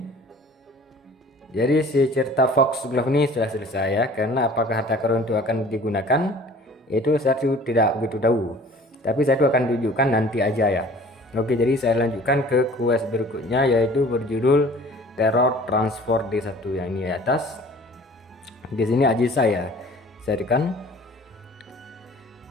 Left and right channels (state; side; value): normal; both; correlation 0.48